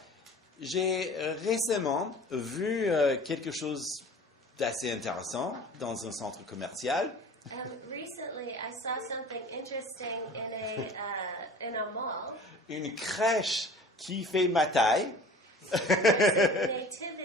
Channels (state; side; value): normal; both; correlation 0.43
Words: j'ai récemment vu quelque chose d'assez intéressant dans un centre commercial. Recently, I saw something interesting in a mall. Une crèche qui fait ma taille. There's a